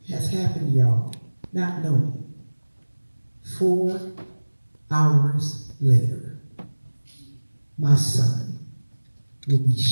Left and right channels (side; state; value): both; inverted; correlation -1.00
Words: has happened, y'all, not knowing. 4 hours later, my son will be